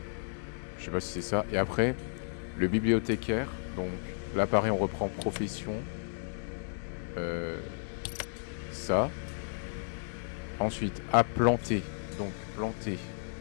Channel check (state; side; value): silent; right; digital silence